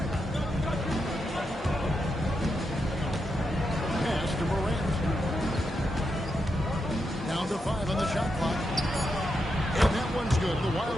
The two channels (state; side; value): normal; both; correlation 0.84